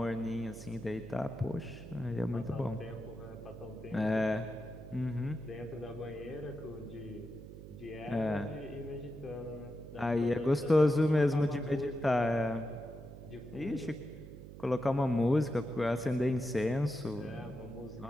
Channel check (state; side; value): noise; right; hum, 14 dB below the sound